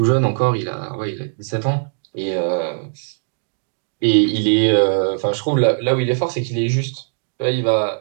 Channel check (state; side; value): silent; left; digital silence